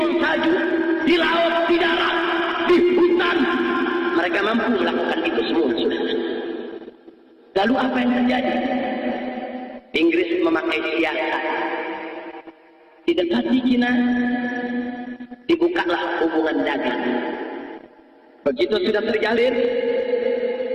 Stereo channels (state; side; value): identical; both; correlation 1.00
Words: salju, di laut, di darat, di hutan. Mereka mampu melakukan itu semua, saudara. Lalu apa yang terjadi? Di Inggris memakai siasat. Didekati Cina, dibukalah hubungan dagang. Begitu sudah terjalin,